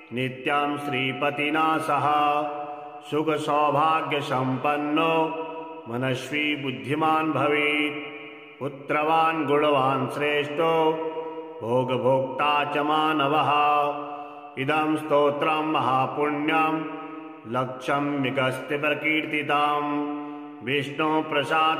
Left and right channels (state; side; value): identical; both; correlation 1.00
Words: नित्यं श्रीपतिना सह सुखसौभाग्यसम्पन्नो मनस्वी बुद्धिमान् भवेत् पुत्रवान् गुणवान् श्रेष्ठो भोगभोक्ता च मानवः इदं स्तोत्रं महापुण्यं लक्ष्म्यगस्त्य प्रकीर्तितं